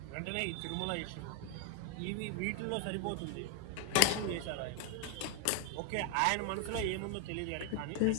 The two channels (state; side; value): different; both; correlation 0.01